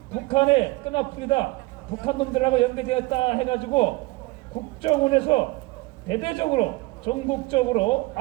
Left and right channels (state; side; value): quieter; left; 22.5 dB